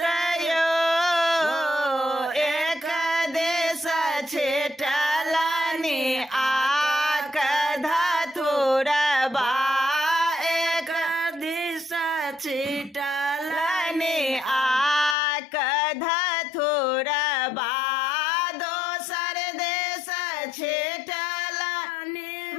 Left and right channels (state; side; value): drops out; right; at 15.2 s